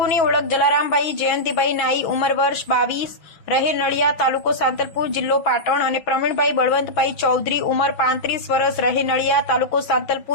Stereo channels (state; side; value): late; right; 6.0 ms